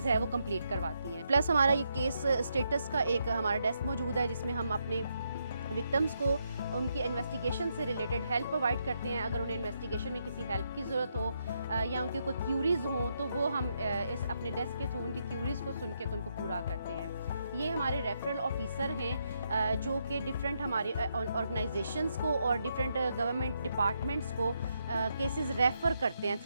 है वो कंप्लीट करवाती हैं। प्लस हमारा ये केस स्टेटस का एक हमारा डेस्क मौजूद है जिसमें हम अपने विक्टिम्स को उनकी इन्वेस्टिगेशन से रिलेटेड हेल्प प्रोवाइड करते हैं। अगर उन्हें इन्वेस्टिगेशन में किसी हेल्प की ज़रूरत हो या उनकी कोई क्यूरीज़ हों तो वो हम इस अपने डेस्क के थ्रू उनकी क्यूरीज़ को सुन के तो उनको पूरा करते हैं। ये हमारे रेफरल ऑफिसर हैं जो कि डिफरेंट हमारे ऑर्गेनाइजेशंस को और डिफरेंट गवर्नमेंट डिपार्टमेंट्स को केसेस रेफ़र करते हैं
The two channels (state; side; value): inverted; both; correlation -0.79